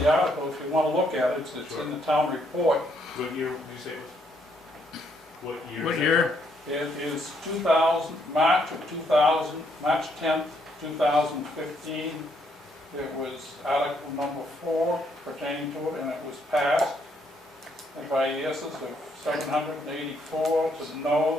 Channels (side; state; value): both; normal; correlation 0.72